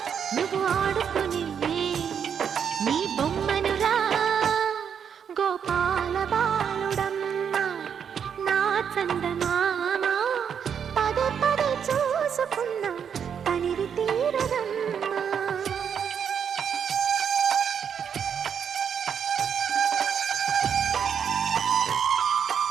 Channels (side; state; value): left; quieter; 7.6 dB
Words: నువ్వు ఆడుకుని నీ బొమ్మనురా గోపాల బాలుడమ్మ నా చందమామ పదే పదే చూసుకున్నా తనివి తీరదమ్మా